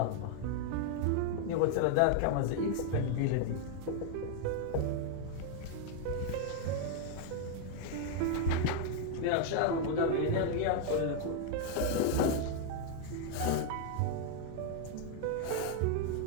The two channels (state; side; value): different; both; correlation 0.00